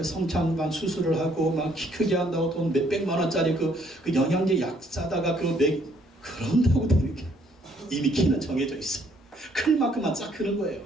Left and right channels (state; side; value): normal; both; correlation 0.66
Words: 성장판 수술을 하고 막 키 크게 한다고 돈 몇백만 원짜리 그 영양제 약 사다가 그런다고 되는 게 이미 키는 정해져 있어. 클 만큼만 쫙 크는 거예요.